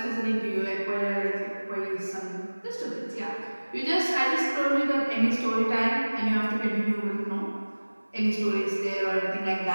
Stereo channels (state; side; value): inverted; both; correlation -1.00